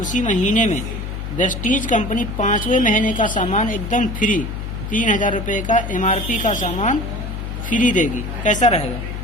महीने में वेस्टीज कंपनी 5वें महीने का सामान एकदम फ्री, 3000 रुपये का MRP का सामान फ्री देगी। कैसा रहेगा?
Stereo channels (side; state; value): left; noise; hum, 6 dB below the sound